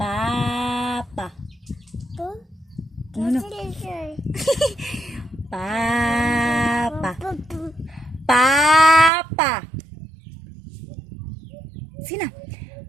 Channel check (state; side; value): drops out; left; at 9.1 s